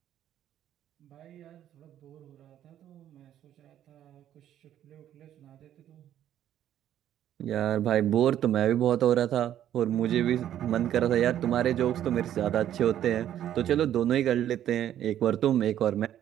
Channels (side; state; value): left; quieter; 11.2 dB